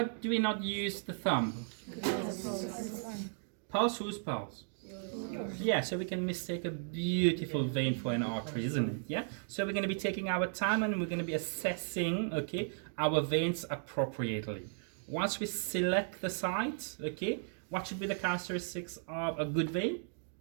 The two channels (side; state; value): left; silent; digital silence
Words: do we not use the thumb? Pulse, whose pulse? Yeah, so we can mistake a beautiful vein for an artery, isn't it? Yeah. So we're going to be taking our time and we're going to be assessing, okay, our veins appropriately. Once we select the site, okay, what should be the characteristics of a good vein?